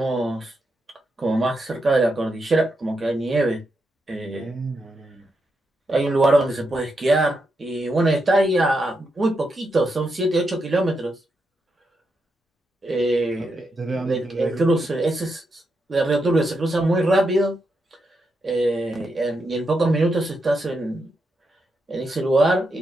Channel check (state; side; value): normal; both; correlation 0.84